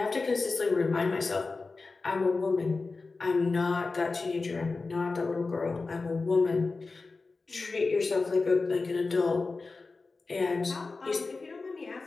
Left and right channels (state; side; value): quieter; right; 3.9 dB